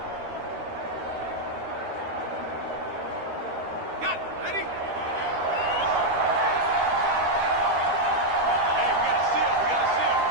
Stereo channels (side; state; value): left; late; 13 ms